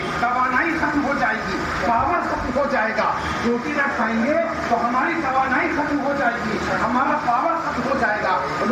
توانائی ختم ہو جائے گی، پاور ختم ہو جائے گا. روٹی نہ کھائیں گے تو ہماری توانائی ختم ہو جائے گی، ہمارا پاور ختم ہو جائے گا.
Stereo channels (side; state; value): both; identical; correlation 1.00